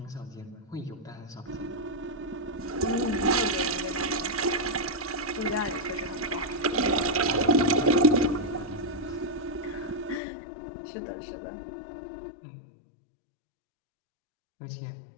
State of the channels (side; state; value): right; drops out; at 10.2 s